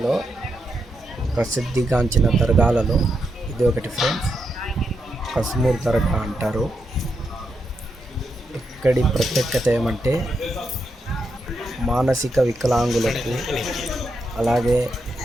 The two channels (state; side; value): normal; both; correlation 0.83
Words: ప్రసిద్ధిగాంచిన దర్గాలలో ఇది ఒకటి ఫ్రెండ్స్ కస్మూర్ దర్గా అంటారు ఇక్కడి ప్రత్యేకత ఏమంటే మానసిక వికలాంగులకు అలాగే